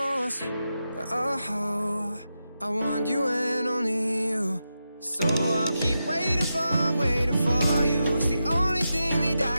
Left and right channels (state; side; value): inverted; both; correlation -0.89